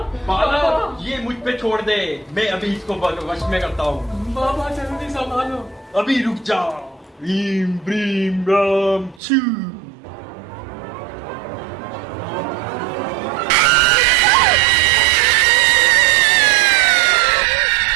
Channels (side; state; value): left; drops out; at 9.2 s